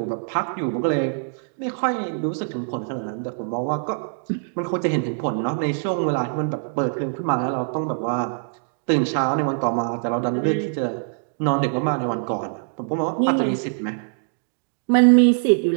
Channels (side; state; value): left; silent; digital silence